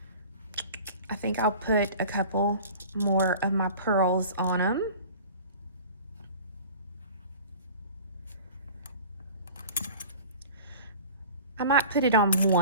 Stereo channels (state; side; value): inverted; both; correlation -0.41